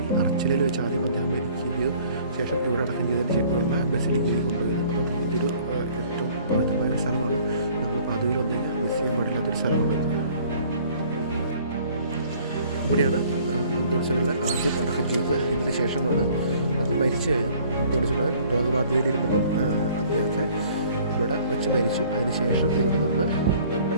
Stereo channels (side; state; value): both; inverted; correlation -0.55